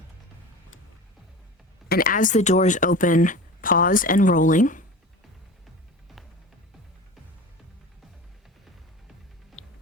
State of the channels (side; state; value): both; normal; correlation 0.34